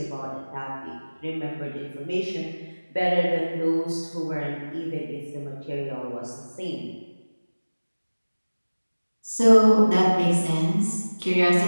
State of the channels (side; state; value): both; inverted; correlation -1.00